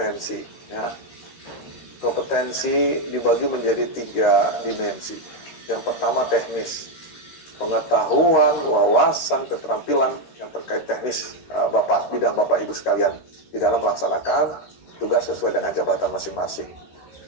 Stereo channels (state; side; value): late; right; 13 ms